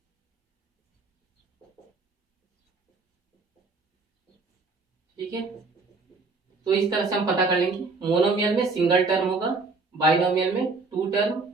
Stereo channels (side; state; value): left; quieter; 3.9 dB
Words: ठीक है, तो इस तरह से हम पता कर लेंगे। मोनोमियल में सिंगल टर्म होगा, बाइनोमियल में 2 टर्म,